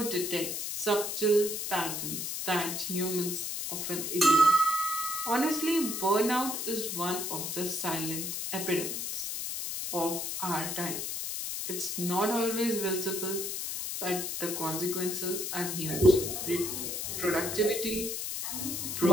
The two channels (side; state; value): left; noise; hiss, 3 dB below the sound